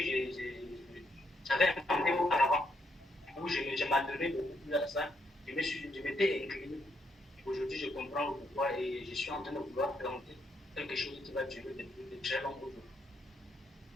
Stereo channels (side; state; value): both; normal; correlation 0.76